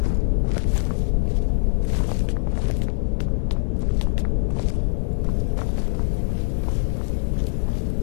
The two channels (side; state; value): right; silent; digital silence